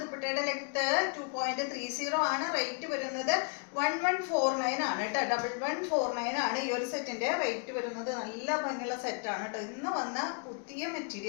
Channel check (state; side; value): quieter; right; 37.2 dB